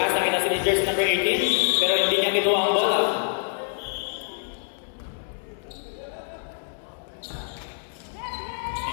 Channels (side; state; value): right; silent; 61 dB below the other